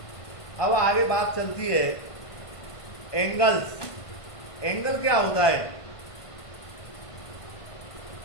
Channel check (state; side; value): late; right; 1.5 ms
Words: अब आगे बात चलती है एंगल्स। एंगल क्या होता है?